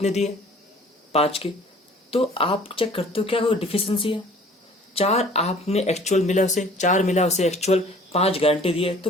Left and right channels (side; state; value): both; normal; correlation 0.51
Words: दी है 5 की। तो आप चेक करते हो क्या कोई डिफिशिएंसी है। 4 आपने एक्चुअल मिला उसे, 4 मिला उसे एक्चुअल, 5 गारंटी दी है, तो